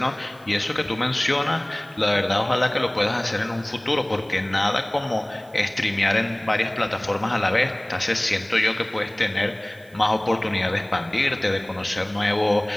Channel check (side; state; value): right; noise; hiss, 28 dB below the sound